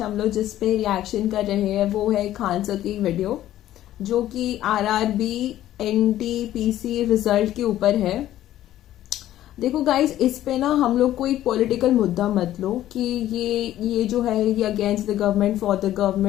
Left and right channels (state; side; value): quieter; right; 13.2 dB